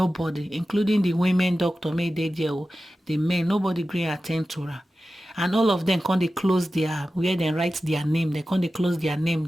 including the women doctor, made they there. The men, nobody gree attend to her. And all of them they close where they write their name. They they close their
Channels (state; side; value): normal; both; correlation 0.94